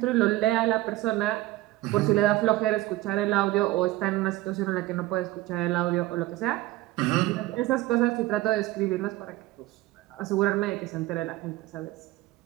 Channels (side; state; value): left; quieter; 17.3 dB